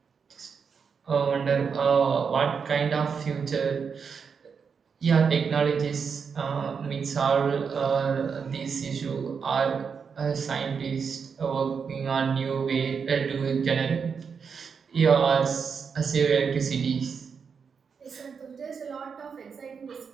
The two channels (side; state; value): left; quieter; 6.1 dB